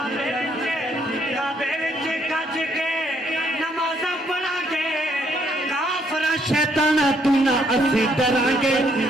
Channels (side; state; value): both; normal; correlation 0.70